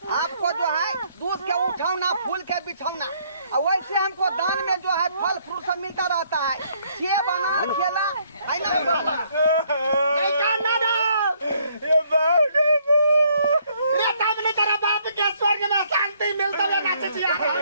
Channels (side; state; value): both; inverted; correlation -0.67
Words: आपको जो है दूध के उठाना फूल के बिछौना और वैसे हमको दान में जो है फल फ्रूट सब मिलता रहता है सेब अनार केला है ना नहीं काना ये बात रे तब ने तेरा बाप के स्वर्ग में शांति मिलता है ना चिचिया